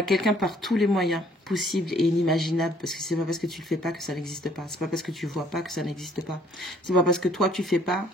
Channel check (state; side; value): normal; both; correlation 0.61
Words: quelqu'un par tous les moyens possibles et inimaginables, parce que c'est pas parce que tu le fais pas que ça n'existe pas. C'est pas parce que tu vois pas que ça n'existe pas. C'est pas parce que toi tu fais pas